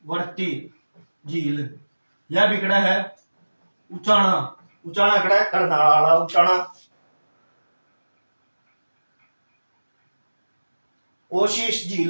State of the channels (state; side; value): inverted; both; correlation -1.00